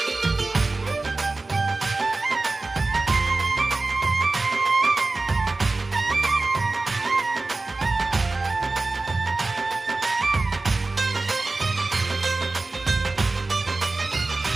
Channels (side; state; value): left; quieter; 3.4 dB